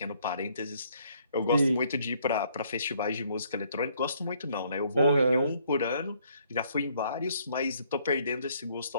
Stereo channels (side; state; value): both; inverted; correlation -0.66